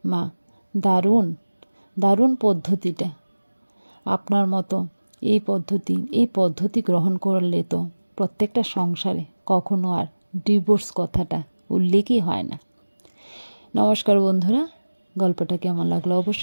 মা, দারুণ পদ্ধতিটা। আপনার মতো এই পদ্ধতি গ্রহণ করলে তো প্রত্যেকটা সংসারে কখনো আর ডিভোর্স কথাটা উল্লেখই হয় না। নমস্কার বন্ধুরা, গল্পটা কেমন লাগলো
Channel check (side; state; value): both; inverted; correlation -1.00